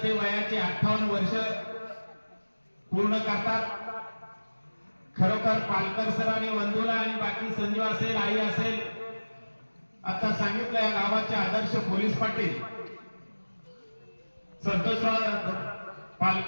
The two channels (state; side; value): inverted; both; correlation -1.00